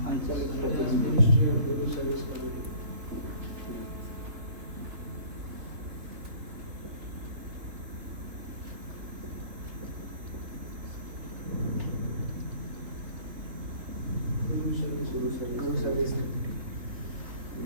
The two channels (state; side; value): late; left; 3.5 ms